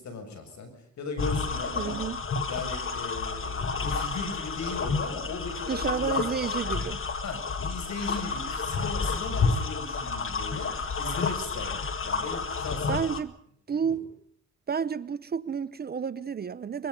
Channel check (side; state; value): both; normal; correlation 0.20